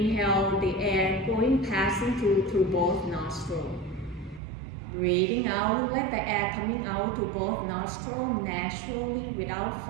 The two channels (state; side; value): drops out; left; at 4.4 s